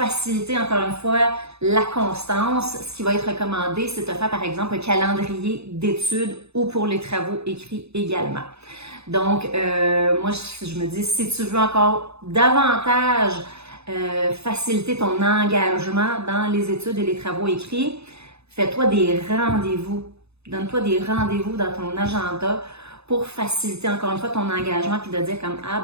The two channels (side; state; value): left; late; 0.79 ms